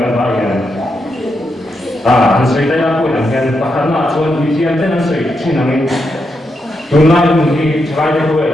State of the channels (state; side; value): normal; both; correlation 0.83